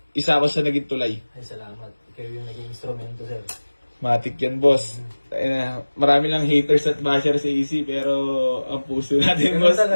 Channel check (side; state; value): both; inverted; correlation -1.00